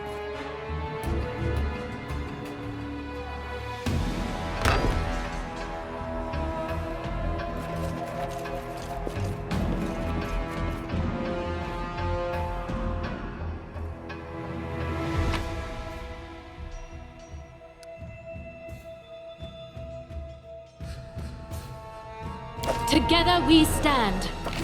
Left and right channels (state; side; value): identical; both; correlation 1.00